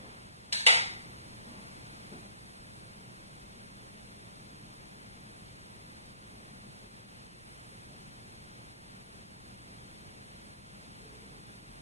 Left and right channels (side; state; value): both; inverted; correlation -0.62